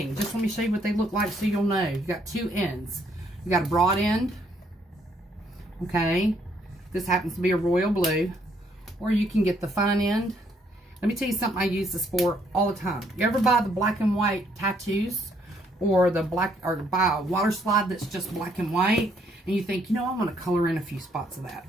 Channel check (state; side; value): normal; both; correlation 0.69